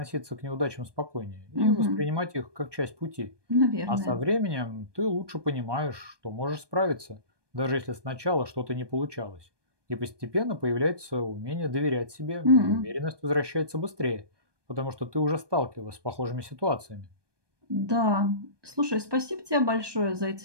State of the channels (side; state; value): left; late; 1.2 ms